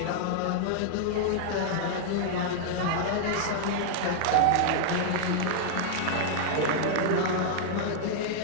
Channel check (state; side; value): different; both; correlation -0.01